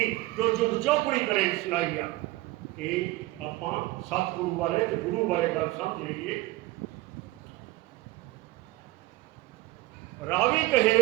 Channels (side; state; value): left; quieter; 19.1 dB